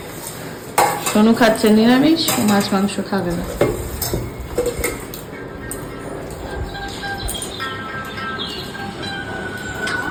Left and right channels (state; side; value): identical; both; correlation 1.00